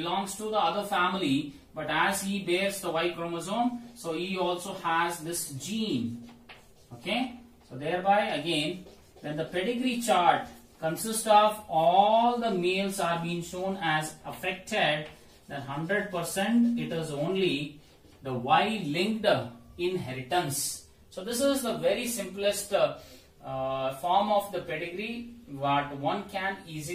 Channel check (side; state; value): both; identical; correlation 1.00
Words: to the other family, but as he bears the Y chromosome, so he also has this gene. Okay, so thereby again, when the pedigree chart consists of all the males are being shown as affected, then 100% it is only the Y-linked inheritance. So this is the very simplest form of the pedigree what one can